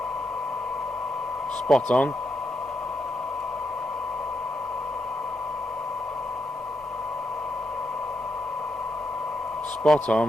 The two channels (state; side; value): normal; both; correlation 0.82